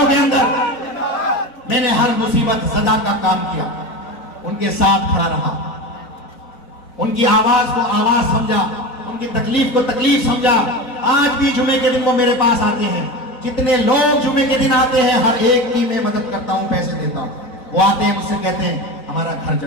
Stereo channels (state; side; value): late; right; 4.0 ms